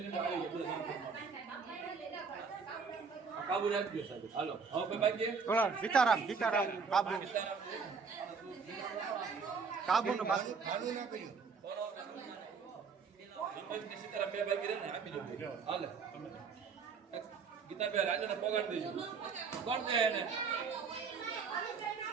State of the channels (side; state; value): left; quieter; 5.4 dB